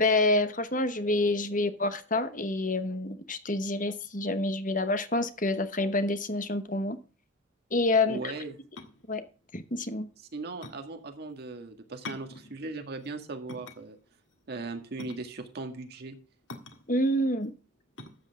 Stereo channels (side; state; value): both; normal; correlation 0.24